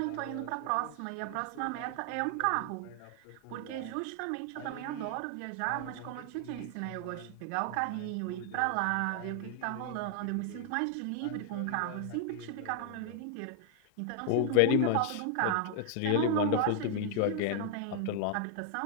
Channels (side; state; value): both; different; correlation 0.00